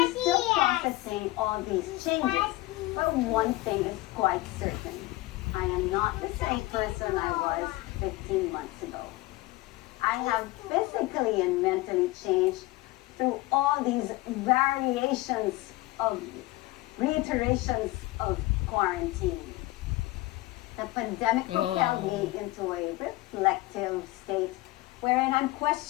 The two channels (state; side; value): quieter; right; 19.4 dB